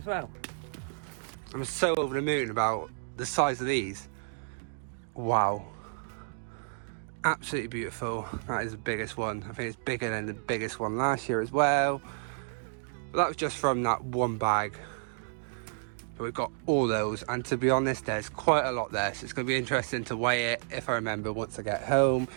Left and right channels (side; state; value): left; silent; digital silence